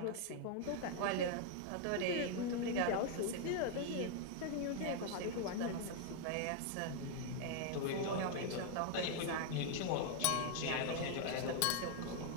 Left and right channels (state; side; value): different; both; correlation 0.00